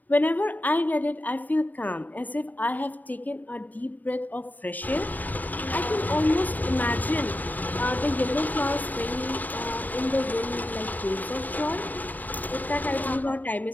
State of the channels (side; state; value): right; late; 0.083 ms